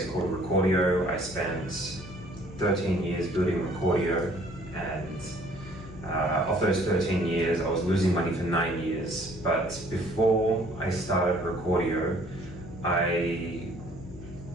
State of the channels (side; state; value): left; noise; hum, 15 dB below the sound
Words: called Recordio. I spent 13 years building Recordio, and of those 13 years I was losing money for 9 years. But before I started Recordio,